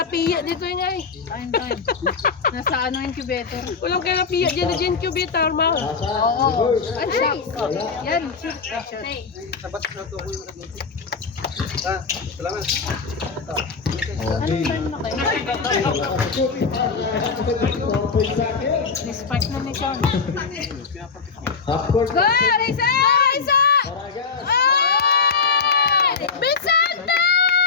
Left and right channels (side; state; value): right; quieter; 5.1 dB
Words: dito yung ay. Time. Nasa ano incubator? Kulang kayo lapiya dyan na incubator, ma. Asa? Ay, siya. Yan. Okay. Spark na ni Sean. Half court. Go, Risa! Risa! Paragas. Ay! Vicente!